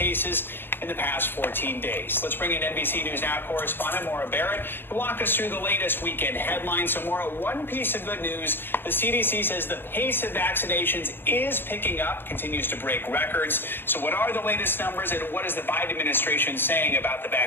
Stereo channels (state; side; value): late; right; 0.099 ms